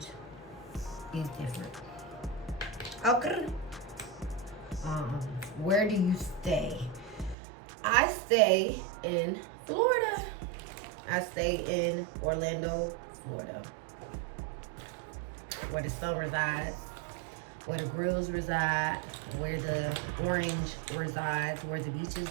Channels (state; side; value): drops out; left; at 7.4 s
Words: is different. Okay. Where do you stay? I stay in Florida. I stay in Orlando, Florida, where the sun resides, where the grills reside, where the orange resides, where the beaches